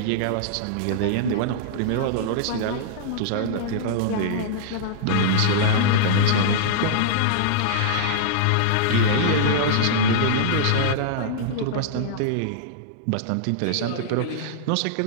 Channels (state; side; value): different; both; correlation -0.02